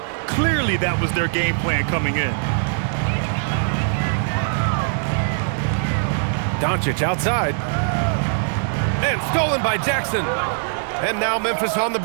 Clearly that was their game plan coming in. Doncic outside. And stolen by Jackson. And now Memphis on the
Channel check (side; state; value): left; silent; digital silence